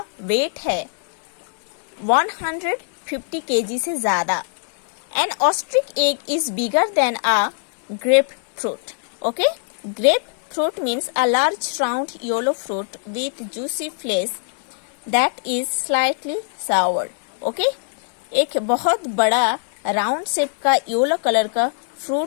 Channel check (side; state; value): right; silent; digital silence